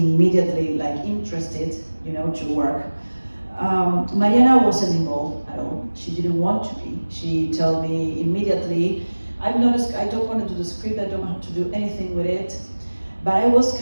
like interested, you know, to work. Mariana wasn't involved at all. She didn't want to be. She told me immediately, I don't want to do the script, I don't have to do anything with it. But I was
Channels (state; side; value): inverted; both; correlation -1.00